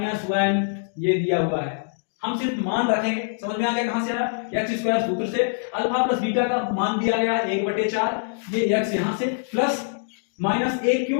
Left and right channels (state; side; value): silent; right; digital silence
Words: ये दिया हुआ है। हम सिर्फ मान रखेंगे, समझ में आ गया कहां से आया, x स्क्वायर सूत्र से अल्फा प्लस बीटा का मान दिया गया 1/4, ये x यहां से प्लस -1